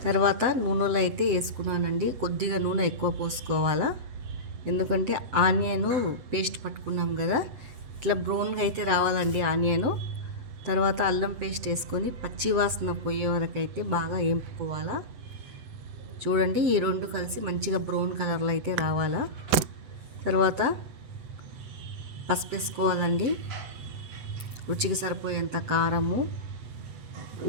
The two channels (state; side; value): late; left; 8.0 ms